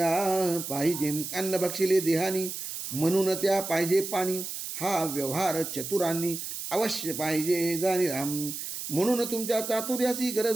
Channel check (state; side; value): noise; right; hiss, 6 dB below the sound